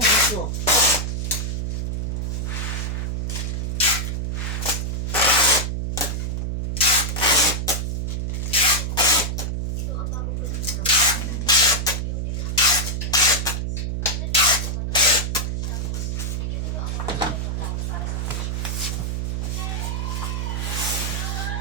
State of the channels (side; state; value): right; noise; hum, 1 dB below the sound